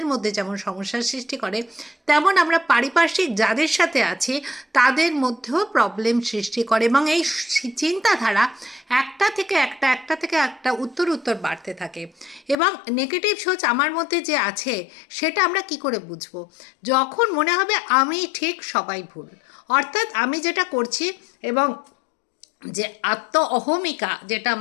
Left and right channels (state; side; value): drops out; right; at 12.6 s